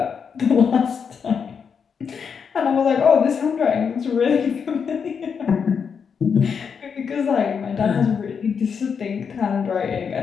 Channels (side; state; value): right; quieter; 6.5 dB